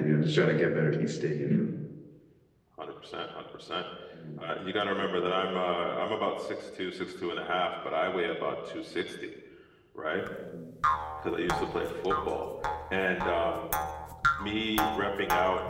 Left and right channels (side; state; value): both; identical; correlation 1.00